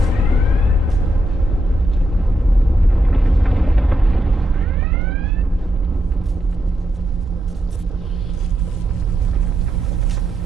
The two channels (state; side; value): normal; both; correlation 0.82